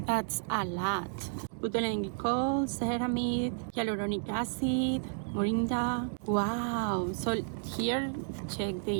That's a lot. Butylene glycol, ceramide, hyaluronic acid, moringa. Wow. So here, check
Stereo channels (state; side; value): silent; left; digital silence